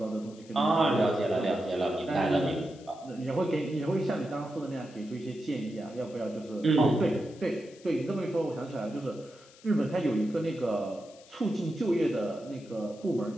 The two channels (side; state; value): left; noise; hiss, 24 dB below the sound